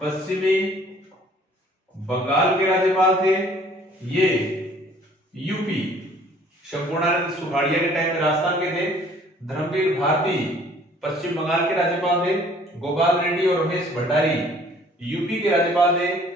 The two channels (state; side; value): normal; both; correlation 0.56